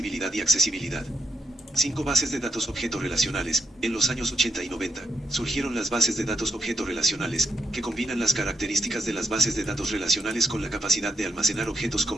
y accesibilidad. 5 bases de datos objeto relacionales. En los años 80 y 90, surgieron las bases de datos objeto relacionales, que combinan las características de las bases de datos relacionales con la capacidad de almacenar objetos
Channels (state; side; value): normal; both; correlation 0.80